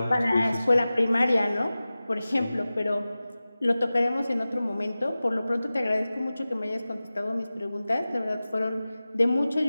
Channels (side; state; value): both; inverted; correlation -0.96